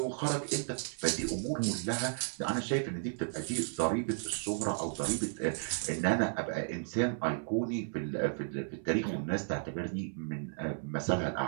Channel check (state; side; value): silent; left; 55 dB below the other